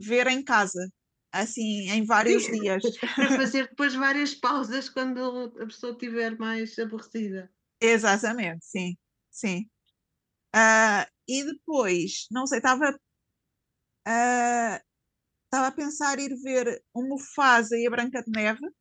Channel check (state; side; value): identical; both; correlation 1.00